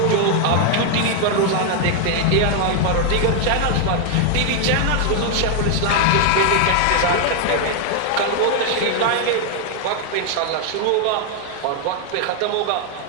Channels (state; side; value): different; both; correlation 0.00